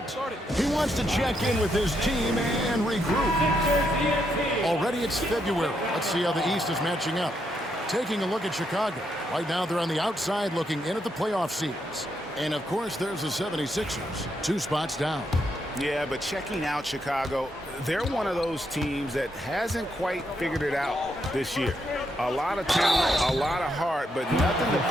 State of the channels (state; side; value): normal; both; correlation 0.78